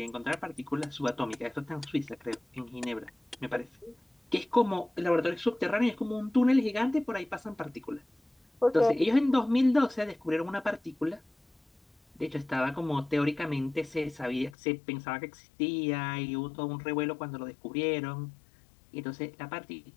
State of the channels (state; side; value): drops out; right; at 14.6 s